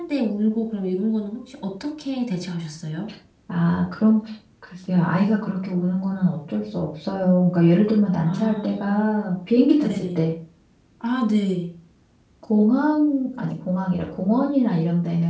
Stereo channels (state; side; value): identical; both; correlation 1.00